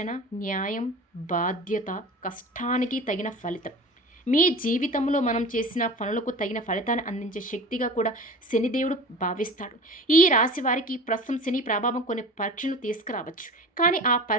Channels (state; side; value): normal; both; correlation 0.36